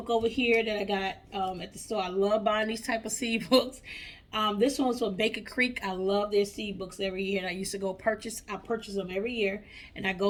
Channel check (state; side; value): identical; both; correlation 1.00